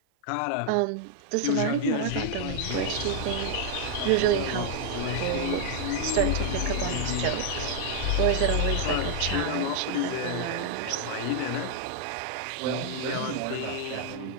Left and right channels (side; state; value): both; different; correlation 0.00